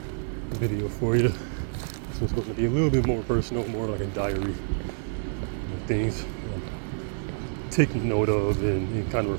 video for you. This one's going to be a little bit more personal, more like a diary. Things I'm taking note of and kind of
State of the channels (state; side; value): silent; left; 56 dB below the other